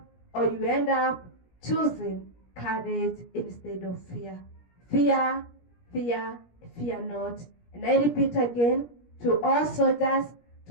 up choosing courage instead of fear. Fear not. And I repeat again, to all soldiers,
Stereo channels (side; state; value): right; late; 17 ms